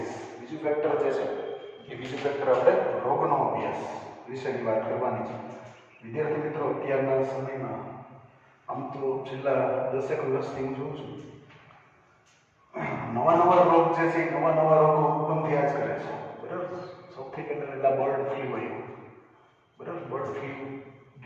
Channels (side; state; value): both; identical; correlation 1.00